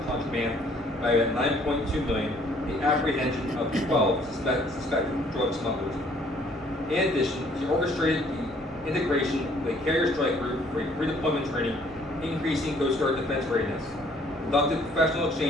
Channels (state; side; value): normal; both; correlation 0.61